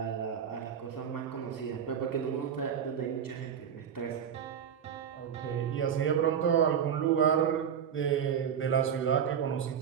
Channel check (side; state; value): left; quieter; 8.2 dB